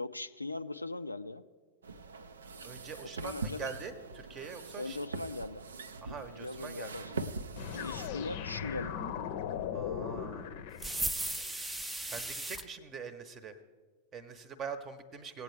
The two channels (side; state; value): both; normal; correlation -0.12